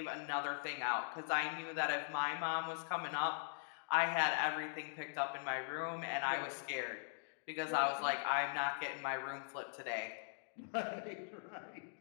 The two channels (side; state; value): right; silent; digital silence